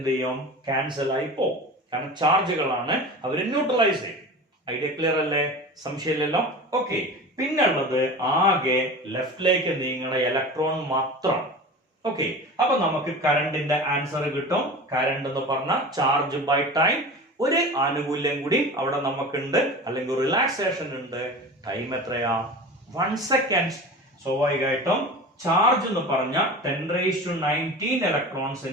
ചെയ്യും? ക്യാൻസൽ ആയി പോകും. കാരണം ചാർജുകളാണ്, അവര് ന്യൂട്രലൈസ് ചെയ്യും. ഐഡിയ ക്ലിയർ അല്ലേ? സംശയമില്ലല്ലോ. ഓക്കെ, പിന്നുള്ളത് ആകെ ലെഫ്റ്റിലേക്ക് നീങ്ങണ ഇലക്ട്രോൺ മാത്രം. ഓക്കെ, അപ്പൊ നമുക്ക് കറണ്ടിന്റെ ആൻസർ കിട്ടും. കറണ്ട് എന്ന് പറഞ്ഞ ചാർജ് ബൈ ടൈം. ഒരു ആനുകൂല്യം കൂടി അവിടെ നമുക്കുണ്ട്, അല്ലെങ്കിൽ റിലാക്സേഷൻ ഉണ്ട്. ടൈം എത്രയാ? 1 സെക്കൻഡ്. സ്വാഭാവികമായിട്ടും ചാർജ് എന്ന് പറഞ്ഞ 10⁻19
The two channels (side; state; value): both; normal; correlation 0.33